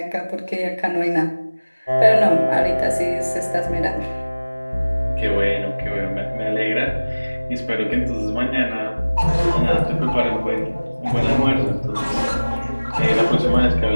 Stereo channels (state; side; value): inverted; both; correlation -1.00